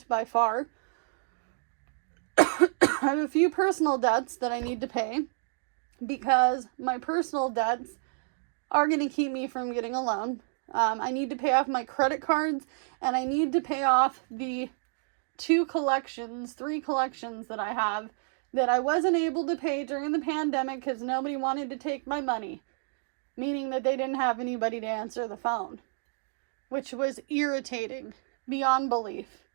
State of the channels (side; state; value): left; silent; digital silence